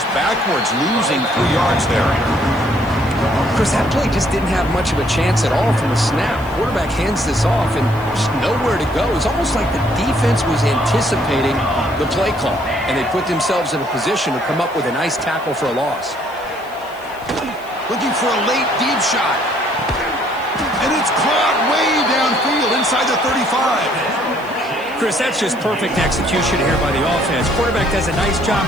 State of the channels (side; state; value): left; noise; hiss, 25 dB below the sound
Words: backwards, losing 3 yards there. Chris, that play just didn't have much of a chance at all from the snap. Quarterback hands this off and just nowhere to go. It's almost like the defense was anticipating the play call, and they put themselves in a position to come up with a nice tackle for a loss. Looking for a late deep shot. And it's caught way downfield inside the 35. Chris, that's just perfect execution here by the offense. Quarterback does a nice job